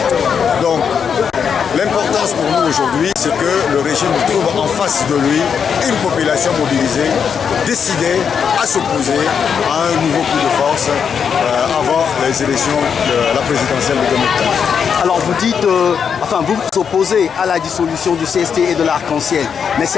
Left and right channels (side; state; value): right; quieter; 7.0 dB